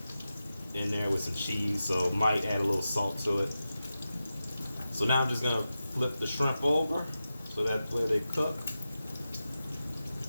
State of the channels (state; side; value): inverted; both; correlation -0.92